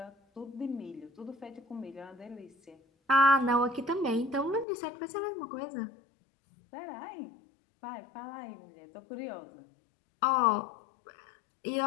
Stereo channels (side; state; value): right; drops out; at 4.7 s